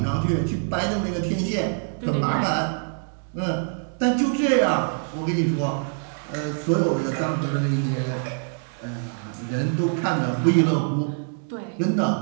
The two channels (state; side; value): silent; left; 62 dB below the other